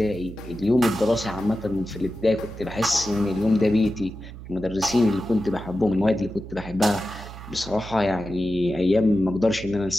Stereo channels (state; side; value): noise; right; hum, 13 dB below the sound